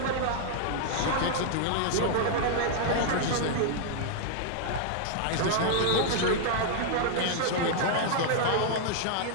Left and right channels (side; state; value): both; different; correlation -0.01